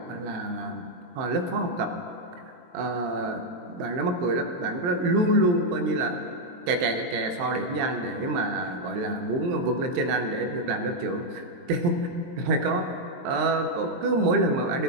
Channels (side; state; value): left; late; 22 ms